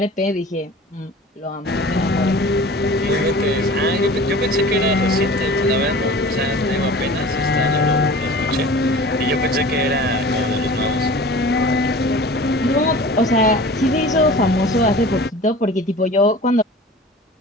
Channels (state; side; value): normal; both; correlation 0.41